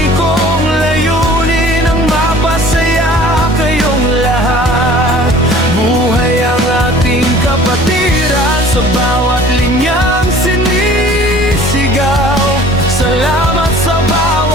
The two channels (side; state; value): both; normal; correlation 0.49